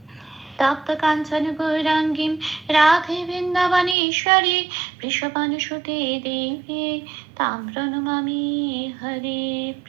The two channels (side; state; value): left; drops out; at 4.0 s